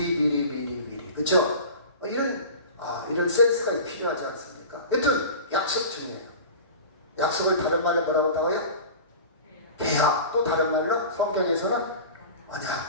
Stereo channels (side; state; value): both; inverted; correlation -0.35